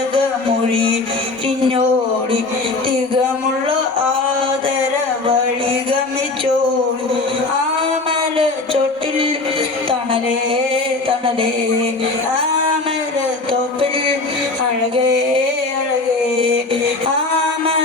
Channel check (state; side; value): quieter; right; 3.3 dB